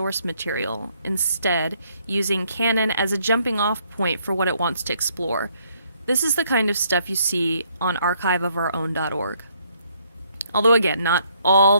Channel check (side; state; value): both; inverted; correlation -0.69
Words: material, instead using canon as a jumping-off point for what it wants to explore. This is the kind of stuff you see on archiveofourown.org. Although, again, not all